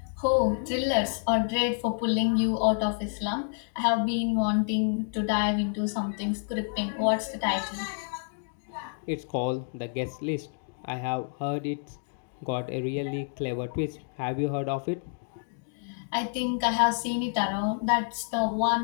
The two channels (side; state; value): right; silent; digital silence